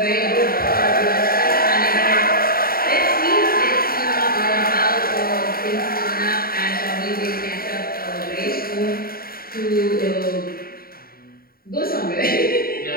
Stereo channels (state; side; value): late; right; 0.43 ms